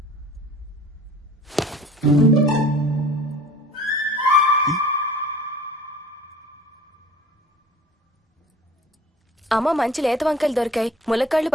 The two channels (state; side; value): normal; both; correlation 0.45